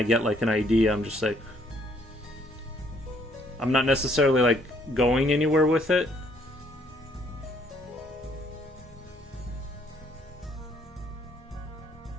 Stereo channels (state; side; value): normal; both; correlation 0.65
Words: get like an idea, I'm just like, I'm not necessarily like going anywhere with it.